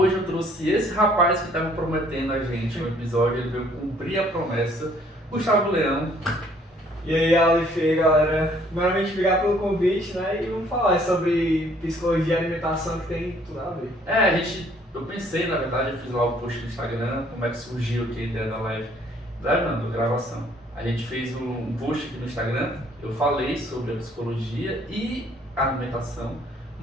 eu trouxe esse rapaz que estava prometendo a gente um episódio, ele veio cumprir a promessa, Gustavo Leão. E aí, Aleph, galera. Primeiramente, obrigado pelo convite, né? E vamos falar sobre psicologia e alimentação, que tem tudo a ver. Eu pensei, na verdade, eu fiz lá o post no Instagram, como é que surgiu aqui a ideia da live, da gravação. A gente fez um post aqui no Instagram, eu falei sobre a psicologia e a alimentação,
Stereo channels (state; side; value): normal; both; correlation 0.61